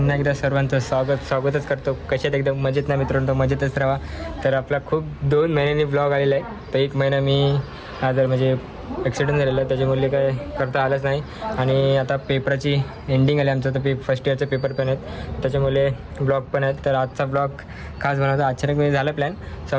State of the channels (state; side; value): identical; both; correlation 1.00